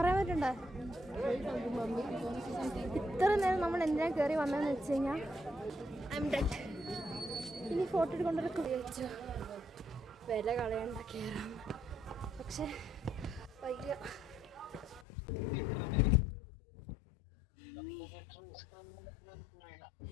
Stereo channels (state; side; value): drops out; right; at 15.1 s